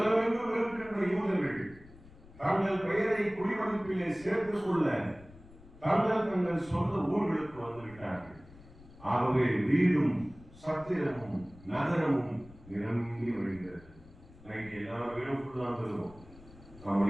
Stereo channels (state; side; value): noise; left; rumble, 21 dB below the sound